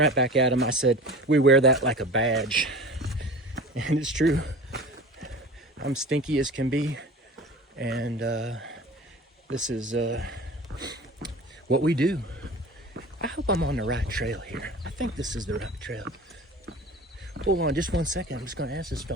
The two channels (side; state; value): both; normal; correlation 0.37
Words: back at him. I said, we wear that like a badge, and it's true. I'm stinky as can be, and this is what we do. I hope I'm on the right trail here. I think this is the right trail. Hold on just one second. I'm just going to ask this